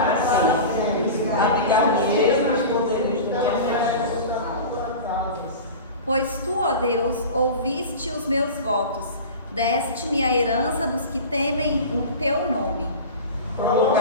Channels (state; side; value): inverted; both; correlation -0.32